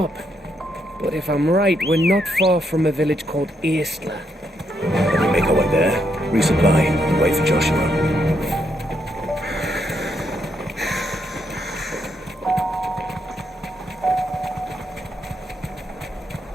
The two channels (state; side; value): normal; both; correlation 0.77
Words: But if I'm right, we're not far from a village called Aistla. Let me make our way there, resupply, and wait for Joshua.